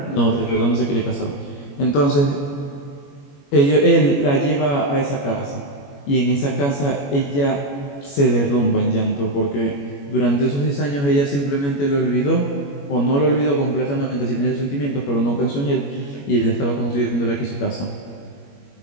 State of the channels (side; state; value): right; late; 21 ms